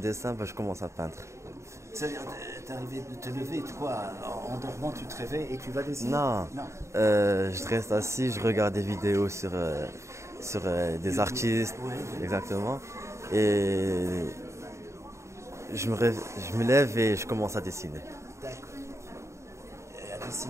je commence à peindre. C'est-à-dire, t'es arrivé de te lever, quoi, en dormant, tu te réveilles et tu vas dessiner? Non, je reste assis, je regarde des vidéos sur des artistes, Ouais. exactement. Et je me lève et je commence à dessiner. D'accord. Et à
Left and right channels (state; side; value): late; left; 0.14 ms